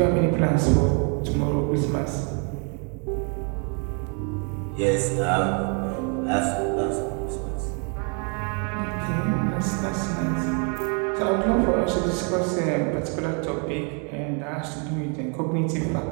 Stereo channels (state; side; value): quieter; left; 38.5 dB